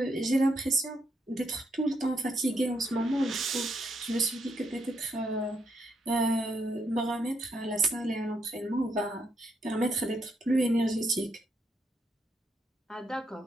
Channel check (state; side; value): normal; both; correlation 0.77